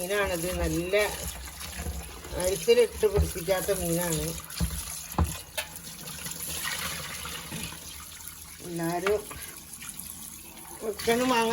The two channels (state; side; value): identical; both; correlation 1.00